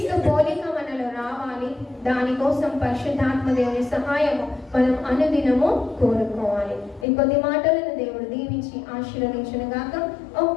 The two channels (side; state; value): right; drops out; at 7.1 s